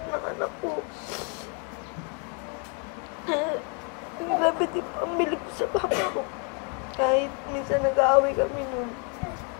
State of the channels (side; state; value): right; quieter; 37.7 dB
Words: ng anak ko. Ang grabe din pambili ko sa Papa ko. Kahit minsan nag-aaway kami nun.